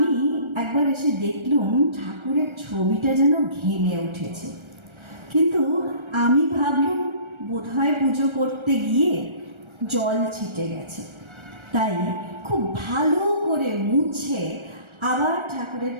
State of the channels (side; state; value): left; late; 1.3 ms